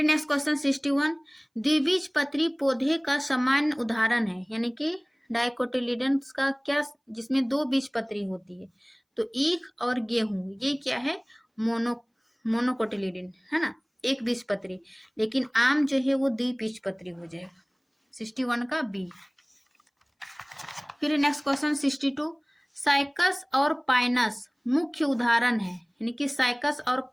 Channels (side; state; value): both; identical; correlation 1.00